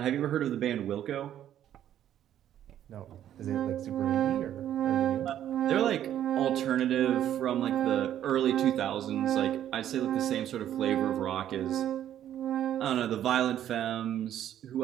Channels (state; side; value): quieter; left; 11.1 dB